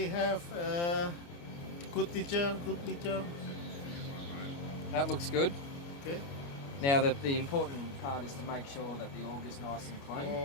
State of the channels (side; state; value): right; late; 29 ms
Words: have a good teacher, That looks good. Okay. Now the important part is to make sure that the auger's nice and clean